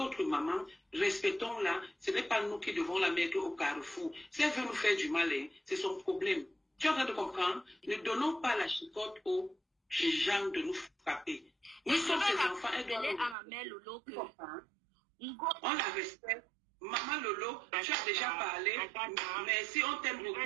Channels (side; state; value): left; drops out; at 13.4 s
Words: maman. Respectons-la. Ce n'est pas nous qui devons la mettre au carrefour. Si elle veut nous faire du mal, c'est son problème. Tu es en train de comprendre? Ne donnons pas la chicotte aux gens de nous frapper. Nous sommes ses enfants. Elle doit à ma mère Lolo que... On la respecte. Maman Lolo, tu as déjà parlé. Merci, on t'aime